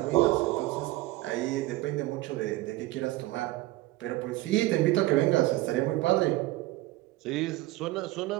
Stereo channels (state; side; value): quieter; left; 18.3 dB